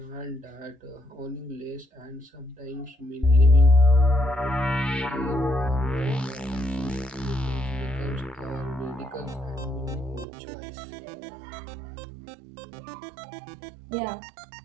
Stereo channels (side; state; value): left; drops out; at 10.2 s